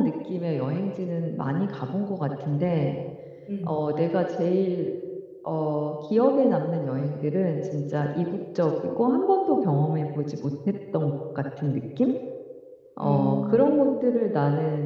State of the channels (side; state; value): both; identical; correlation 1.00